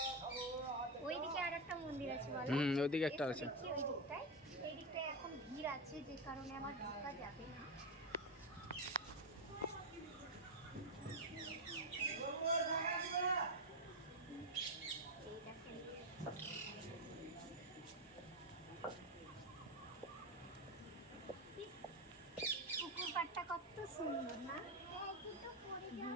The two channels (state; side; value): normal; both; correlation 0.10